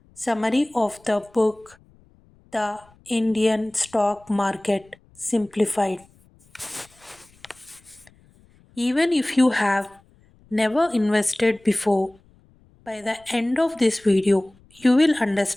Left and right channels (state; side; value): noise; left; rumble, 30 dB below the sound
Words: summary of the book The Indian Stock Market Simplified. Even if you have never invested before, by the end of this video, you will